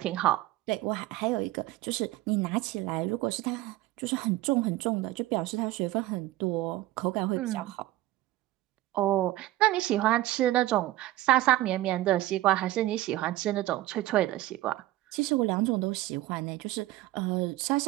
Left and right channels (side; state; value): left; quieter; 16.3 dB